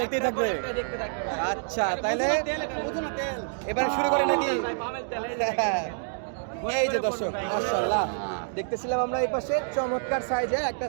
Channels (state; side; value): silent; left; digital silence